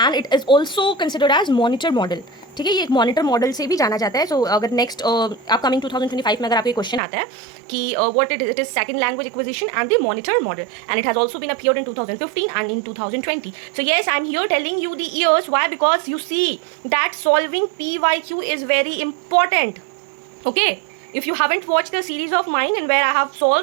and it is also considered as monitor model. ठीक है, ये एक monitor model से भी जाना जाता है. सो अगर नेक्स्ट अपकमिंग 2025 में अगर आपको क्वेश्चन आता है कि what it is second language acquisition and the monitor model, and it has also been appeared in 2015 and in 2020. So yes, I am here telling you the years. Why? Because you see that solving PYQ is very important. Okay, if you haven't watched the series of mine in where I have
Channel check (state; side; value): drops out; left; at 7.0 s